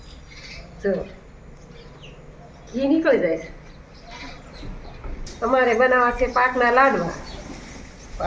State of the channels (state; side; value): identical; both; correlation 1.00